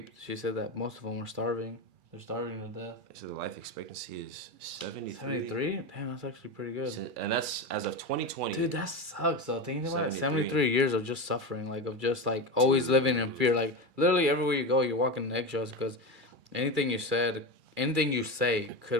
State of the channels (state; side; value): late; left; 2.3 ms